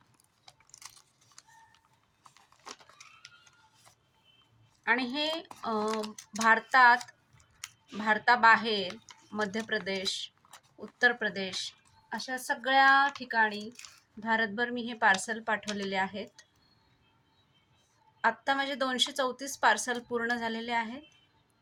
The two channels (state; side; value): identical; both; correlation 1.00